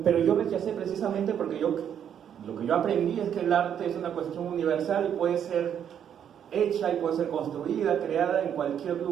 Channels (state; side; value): quieter; left; 8.9 dB